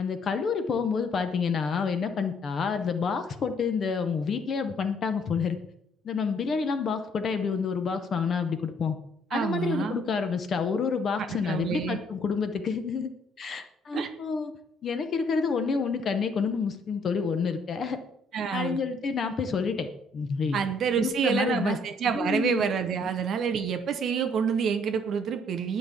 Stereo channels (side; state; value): both; normal; correlation 0.65